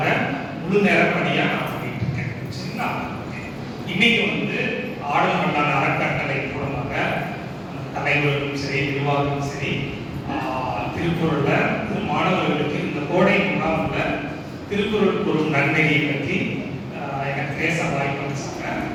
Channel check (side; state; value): both; identical; correlation 1.00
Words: முழு நேர பணியாக நான் பண்ணிட்டு இருக்கேன் சரிங்களா. இன்னைக்கு ஆடும் மன்னார் அறக்கட்டளை மூலமாக தலைவர்களும் சரி நிர்வாகமும் சரி திருக்குறள்ல மாணவர்களுக்கு இந்த கோடை முகாம்ல திருக்குறள் கூறும் நன்மையை பற்றி எனக்கு பேச வாய்ப்பு அளிச்சாங்க.